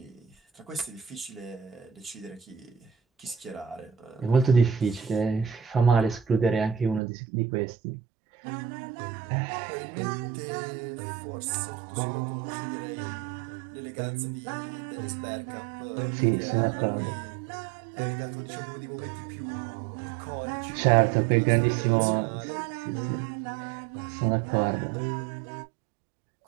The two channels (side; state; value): left; drops out; at 7.0 s